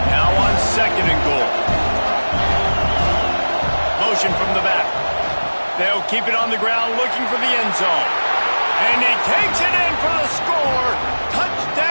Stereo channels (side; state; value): both; inverted; correlation -1.00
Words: Now on second and goal. Motion from the back. They'll keep it on the ground looking for the end zone. And he takes it in for the score.